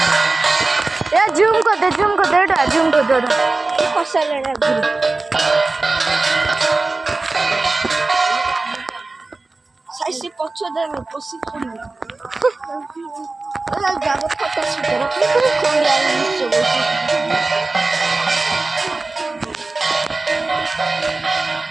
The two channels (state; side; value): quieter; left; 3.4 dB